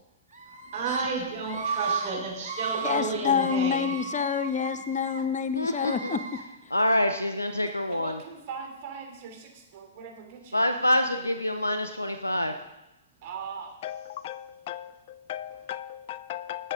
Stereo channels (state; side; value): inverted; both; correlation -0.50